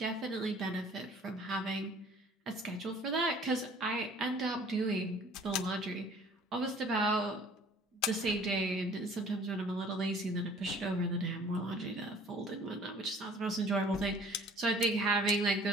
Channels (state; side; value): normal; both; correlation 0.52